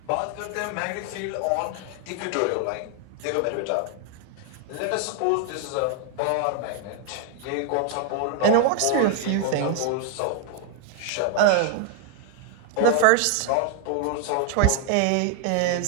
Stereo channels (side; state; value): both; different; correlation 0.00